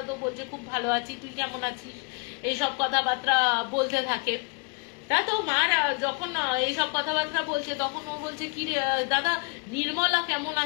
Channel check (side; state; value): right; quieter; 31.2 dB